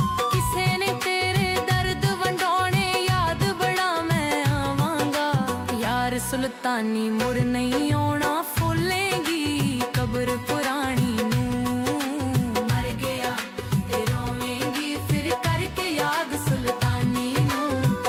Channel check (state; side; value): identical; both; correlation 1.00